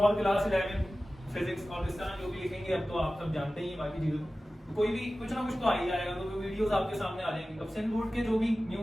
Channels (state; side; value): normal; both; correlation 0.96